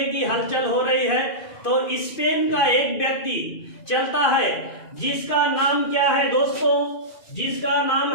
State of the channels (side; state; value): right; late; 2.5 ms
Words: कि हलचल हो रही है, तो स्पेन का एक व्यक्ति चलता है जिसका नाम क्या है दोस्तों, जिसका नाम